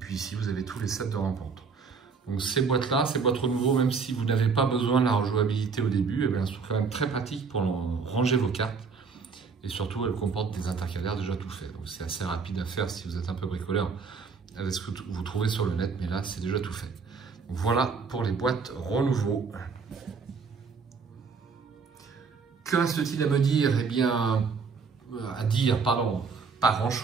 ici, vous avez tous les sets de rencontres. Donc ces boîtes-là, ces boîtes renouveau, même si vous n'avez pas besoin de la rejouabilité au début, eh bien, elles sont quand même très pratiques pour ranger vos cartes. Et surtout, elles comportent des intercalaires déjà tout faits. Donc c'est assez rapide à faire si vous êtes un peu bricoleur avec ce que vous trouvez sur le net. Mais là, c'est déjà tout fait. Donc voilà pour les boîtes renouveau. Que reste-t-il à me dire? Eh bien, pas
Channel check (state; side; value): quieter; left; 5.2 dB